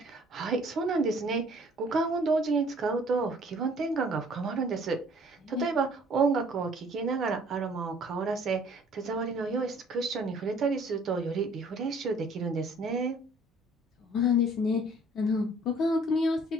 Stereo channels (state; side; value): normal; both; correlation 0.56